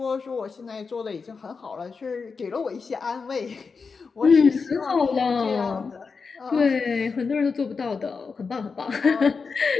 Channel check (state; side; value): quieter; right; 5.0 dB